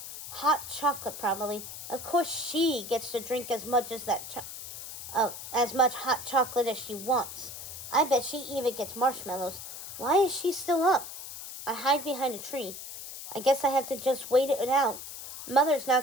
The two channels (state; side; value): noise; left; hiss, 11 dB below the sound